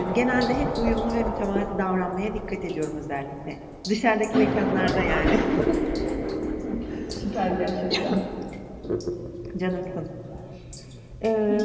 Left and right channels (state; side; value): identical; both; correlation 1.00